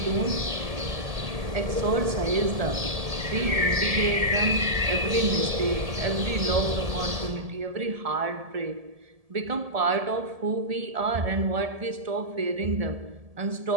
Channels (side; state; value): left; late; 1.7 ms